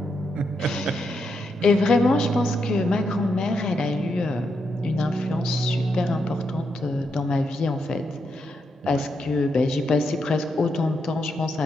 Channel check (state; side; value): normal; both; correlation 0.82